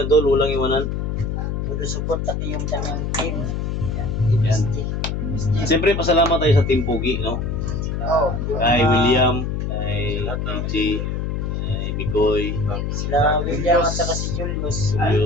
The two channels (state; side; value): noise; left; hum, 2 dB below the sound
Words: tol, walang iwanan. todo support pati yung kanyang team. Yan. Siyempre pasalamat tayo sa Team Pogi, no? Kay William, kay AJ, kay Bicoy, Sila William at saka si Julius.